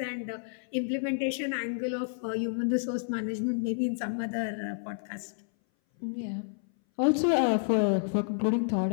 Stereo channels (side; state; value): right; silent; 58 dB below the other